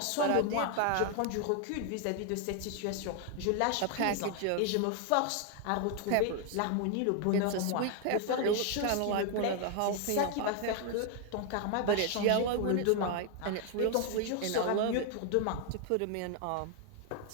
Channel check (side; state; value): both; different; correlation 0.00